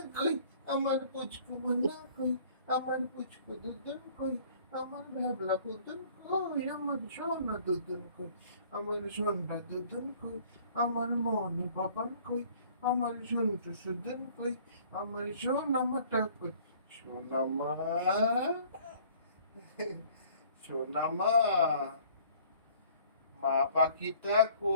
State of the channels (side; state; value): both; inverted; correlation -0.55